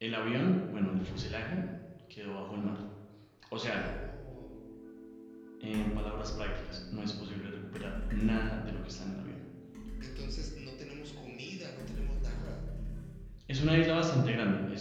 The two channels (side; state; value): both; identical; correlation 1.00